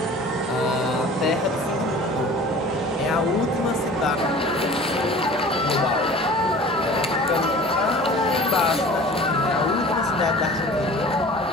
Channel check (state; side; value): normal; both; correlation 0.43